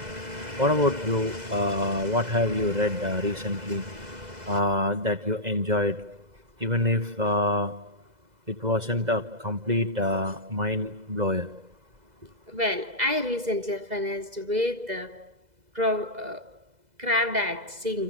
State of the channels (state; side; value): late; left; 2.0 ms